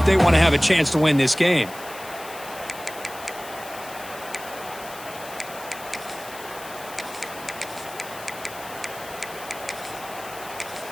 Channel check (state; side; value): noise; left; hiss, 15 dB below the sound